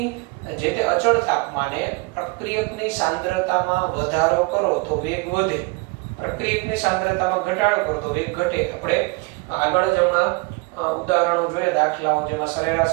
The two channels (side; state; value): left; quieter; 27.5 dB